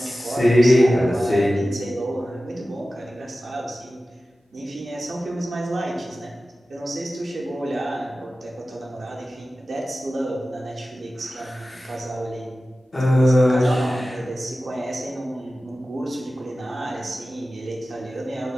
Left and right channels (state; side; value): normal; both; correlation 0.95